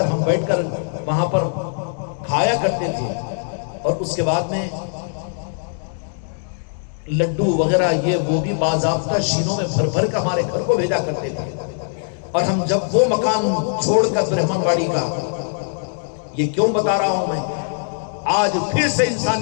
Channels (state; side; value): silent; right; digital silence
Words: ہم بیٹھ کر وہاں پر کھایا کرتے تھے، اور اس کے بعد میں لڈو وغیرہ یہ وہ بھی باضابطہ شینوں میں بھر بھر کر ہمارے گھر کو بھیجا کرتے تھے۔ اور ہم جب وہ مکان چھوڑ کر برہمن واڑی کا، یہ کیوں بتا رہا ہوں میں، آج پھر سے